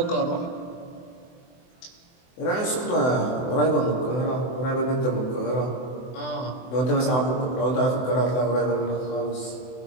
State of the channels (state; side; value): late; right; 24 ms